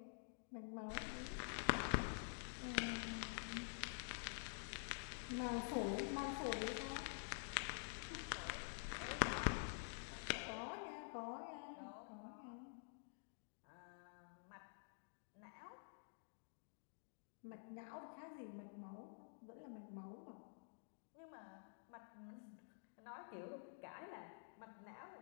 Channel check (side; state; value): right; silent; digital silence